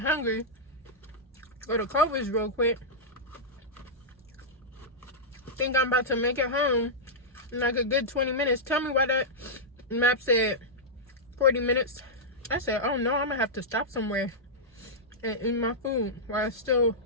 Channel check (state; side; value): normal; both; correlation -0.09